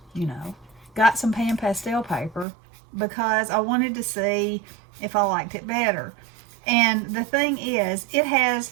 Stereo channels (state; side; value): drops out; left; at 2.5 s